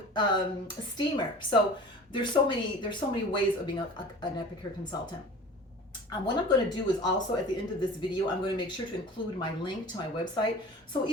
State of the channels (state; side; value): normal; both; correlation 0.40